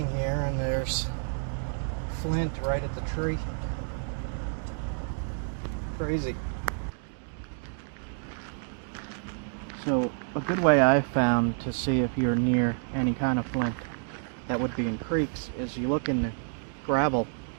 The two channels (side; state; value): left; silent; 57 dB below the other